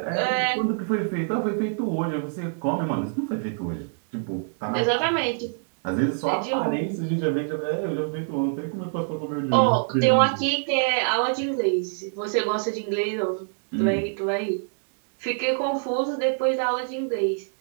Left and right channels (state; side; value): silent; left; digital silence